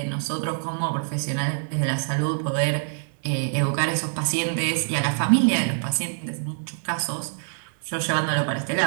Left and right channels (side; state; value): left; silent; 62 dB below the other